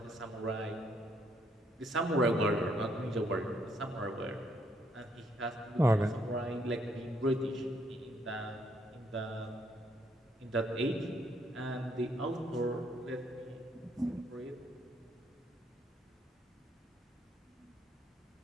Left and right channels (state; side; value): normal; both; correlation 0.71